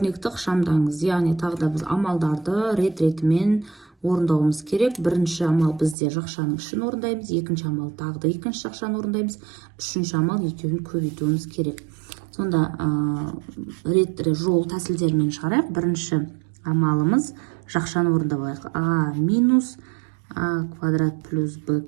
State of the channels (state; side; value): drops out; left; at 6.0 s